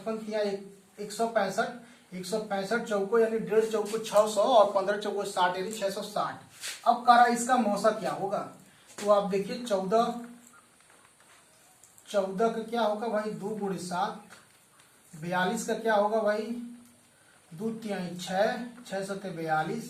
3 165, 165 चौको यानी 1.5 चौको 600 और 15 चौको 60 यानी 660। अब करा इसका मौसा क्या होगा? तो आप देखिए 14 14 का क्या होगा भाई 2 गुणे 7, 42 का क्या होगा भाई 2 तिहाई 6, 6 सत्ते 42,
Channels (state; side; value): identical; both; correlation 1.00